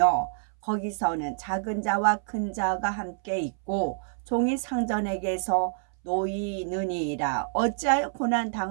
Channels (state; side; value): silent; left; 60 dB below the other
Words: 거기서는 작은 자와 큰 자가 함께 있고 종이 상전에게서 놓이느니라. 어찌하여 고난